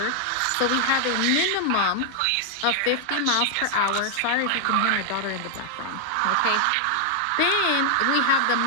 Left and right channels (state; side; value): different; both; correlation 0.00